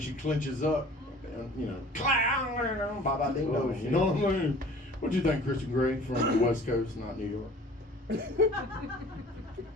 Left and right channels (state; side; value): normal; both; correlation 0.47